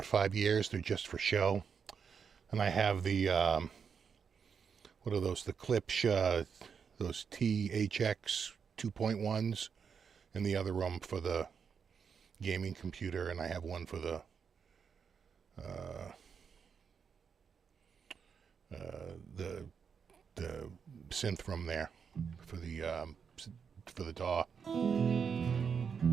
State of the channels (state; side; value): quieter; left; 6.5 dB